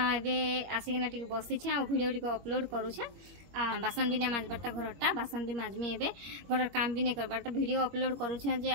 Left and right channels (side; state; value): left; late; 21 ms